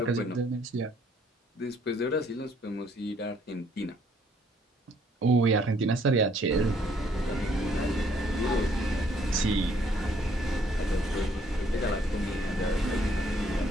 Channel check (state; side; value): normal; both; correlation 0.65